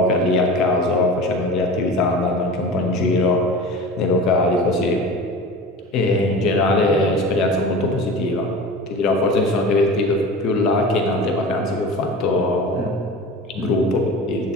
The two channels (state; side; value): normal; both; correlation 0.34